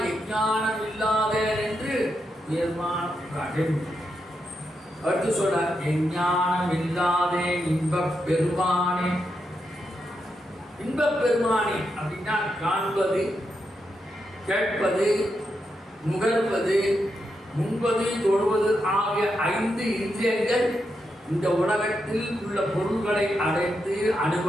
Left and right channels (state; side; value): normal; both; correlation 0.84